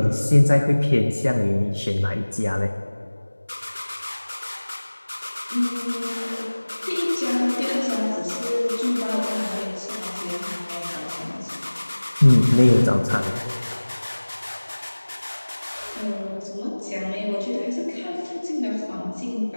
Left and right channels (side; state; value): both; inverted; correlation -1.00